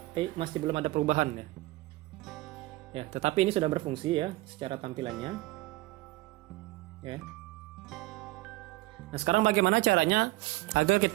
masih belum ada perubahan ya. Ya, tetapi ini sudah berfungsi ya secara tampilannya. Ya. Nah, sekarang bagaimana caranya agar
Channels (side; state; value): left; quieter; 19.2 dB